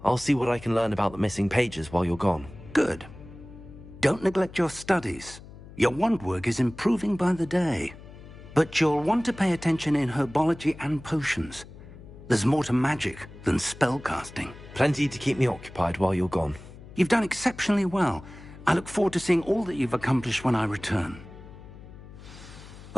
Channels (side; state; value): left; noise; hum, 17 dB below the sound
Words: I'll see what I can learn about the missing pages while you're gone. Good. Don't neglect your studies. Your wand work is improving by the day. But you'll want to pay attention in herbology and potions. There's more to magic than spellcasting. Plenty to keep me occupied while you're gone. You've done exceptionally well. I look forward to seeing all that you've accomplished when I return.